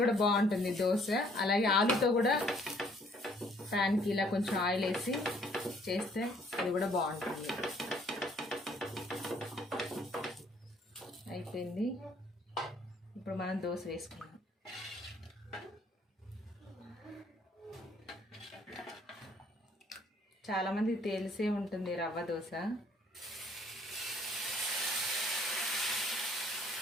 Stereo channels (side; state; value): both; normal; correlation 0.62